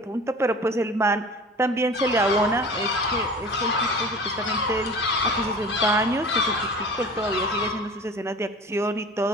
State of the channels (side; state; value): both; normal; correlation 0.40